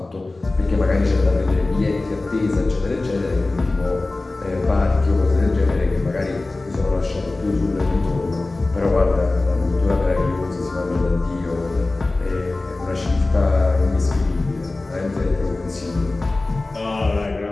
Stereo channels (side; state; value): right; quieter; 3.1 dB